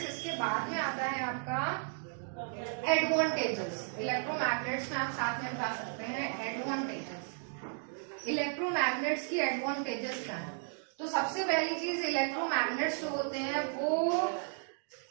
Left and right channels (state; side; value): silent; left; 55 dB below the other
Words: इसके बाद में आता है आपका एडवांटेजेस। इलेक्ट्रोमैग्नेट्स में आप साथ में बता सकते हैं एडवांटेजेस। इलेक्ट्रोमैग्नेट्स की एडवांटेजेस क्या है? तो सबसे पहली चीज इलेक्ट्रोमैग्नेट्स जो होते हैं वो